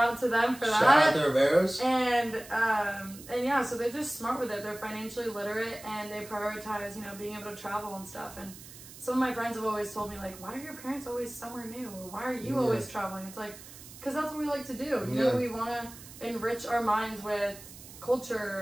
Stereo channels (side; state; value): right; noise; hiss, 17 dB below the sound